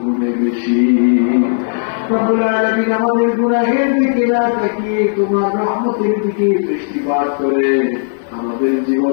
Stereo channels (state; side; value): silent; right; digital silence